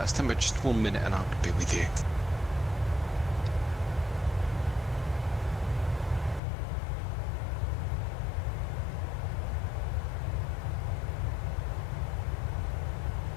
stand by just 1 minute and I'll be with you.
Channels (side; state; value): right; drops out; at 6.4 s